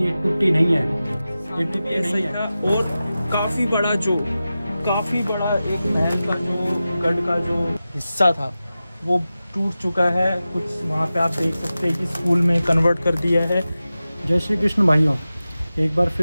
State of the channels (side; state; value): both; inverted; correlation -0.94